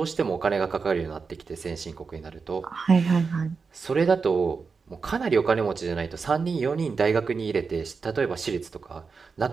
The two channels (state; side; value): quieter; left; 5.0 dB